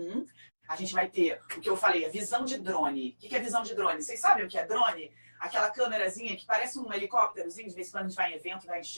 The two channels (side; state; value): both; inverted; correlation -1.00